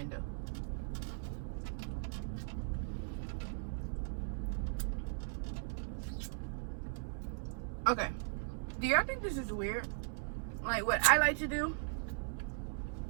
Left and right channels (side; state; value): left; silent; digital silence